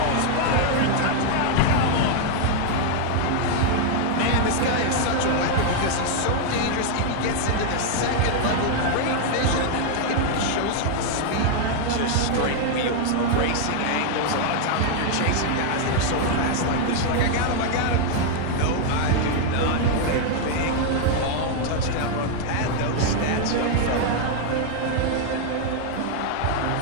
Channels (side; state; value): both; different; correlation 0.00